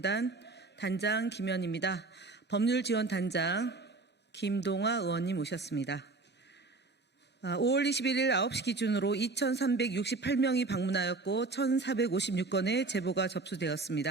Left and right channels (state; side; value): quieter; left; 3.6 dB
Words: 단장 김현입니다. 법률지원단장 김동아 의원님 오셨습니다. 5월 21일 9시 기준으로 2,368명이 방문하였고 1,456건의 제보가